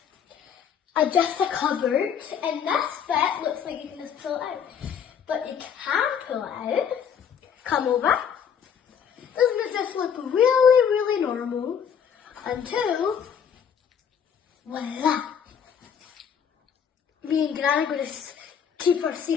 just a cupboard, and this bit looks like you can just pull it out. But you can pull it out. Come over. Doesn't it just look really, really normal? Until, voila. Me and Gran are going to keep our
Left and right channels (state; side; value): quieter; right; 7.8 dB